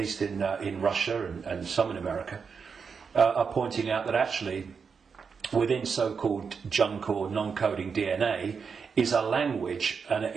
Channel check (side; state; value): left; quieter; 5.8 dB